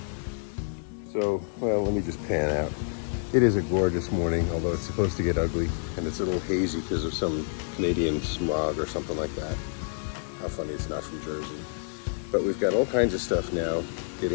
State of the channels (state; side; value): silent; right; digital silence